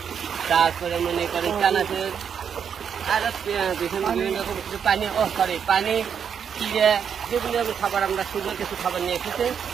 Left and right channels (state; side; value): quieter; left; 7.5 dB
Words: তারপরে মনে করেন চানাচুর আর বিভিন্ন রকম কিছু পানি পানি চিড়ে বিভিন্ন রকম খাবার আমরা সুন্দর কিছু খাবার নিয়ে এসেছি